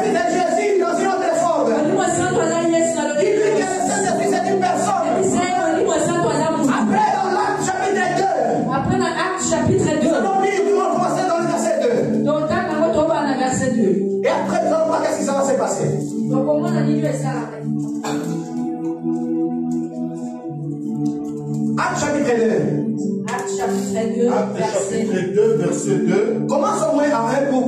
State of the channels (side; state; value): both; identical; correlation 1.00